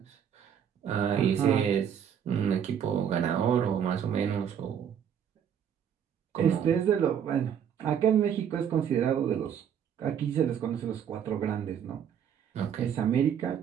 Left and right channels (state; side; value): quieter; left; 8.5 dB